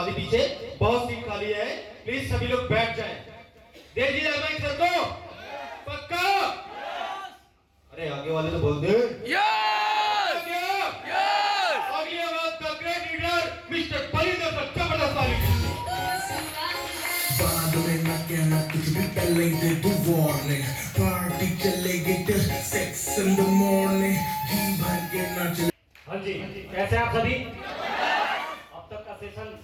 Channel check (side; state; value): both; identical; correlation 1.00